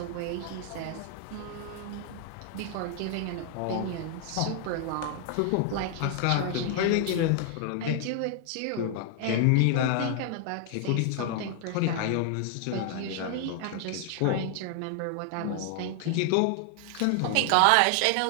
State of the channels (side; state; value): both; different; correlation 0.00